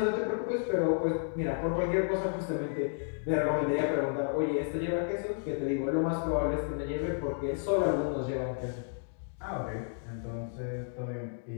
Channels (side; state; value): right; silent; digital silence